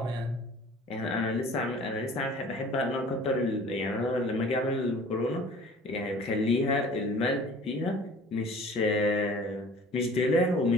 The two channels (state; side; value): normal; both; correlation 0.47